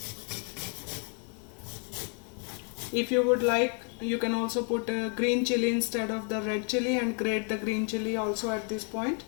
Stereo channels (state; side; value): quieter; right; 39.9 dB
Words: If you would like, you can also put green chili instead of the red chili and grate the green chili also at this point,